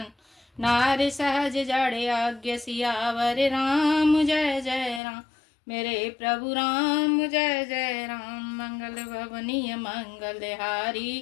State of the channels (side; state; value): right; drops out; at 5.0 s